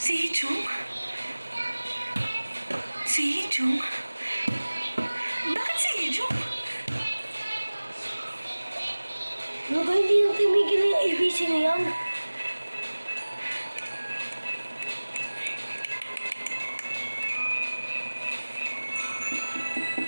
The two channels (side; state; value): both; inverted; correlation -1.00